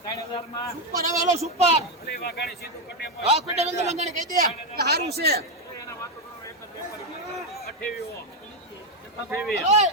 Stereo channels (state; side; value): normal; both; correlation 0.06